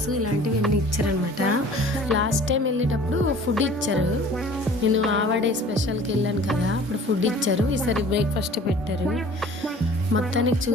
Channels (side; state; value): both; normal; correlation 0.48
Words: ఇలాంటివి అన్నీ ఇచ్చారనమాట. లాస్ట్ టైం వెళ్ళేటప్పుడు ఫుడ్ ఇచ్చారు. నేను ఆవాడే స్పెషల్కి వెళ్ళాను కదా, అప్పుడు ఫుడ్ ఇచ్చారు. ఈసారి బ్రేక్ఫాస్ట్ పెట్టారు. మొత్తానికి